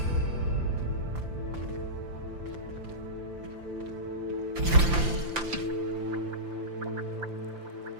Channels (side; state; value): left; late; 5.8 ms